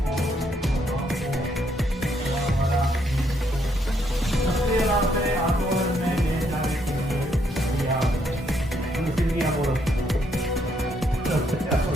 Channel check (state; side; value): normal; both; correlation 0.73